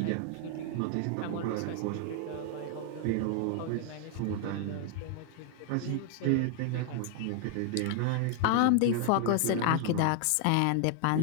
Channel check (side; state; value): both; different; correlation 0.00